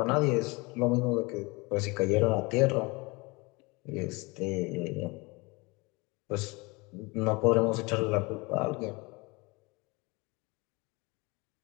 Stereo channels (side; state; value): right; quieter; 26.1 dB